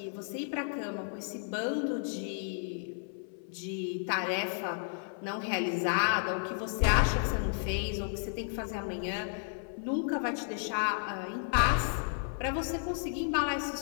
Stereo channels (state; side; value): silent; right; 56 dB below the other